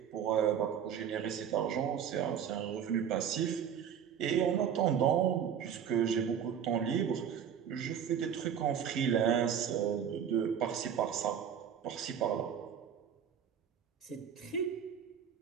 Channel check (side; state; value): left; quieter; 8.4 dB